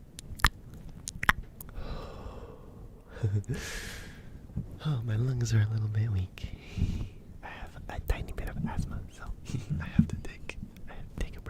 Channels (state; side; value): identical; both; correlation 1.00